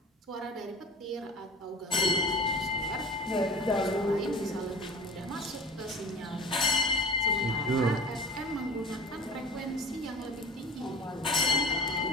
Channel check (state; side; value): normal; both; correlation 0.38